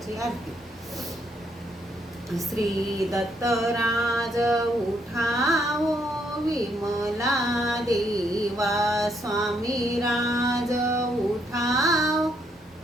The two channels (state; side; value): normal; both; correlation 0.73